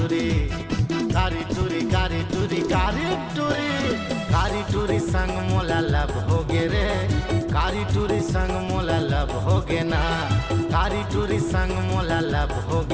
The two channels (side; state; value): both; identical; correlation 1.00